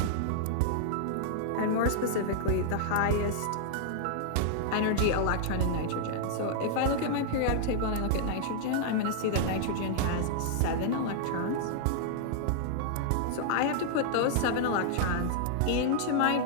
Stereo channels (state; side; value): different; both; correlation -0.01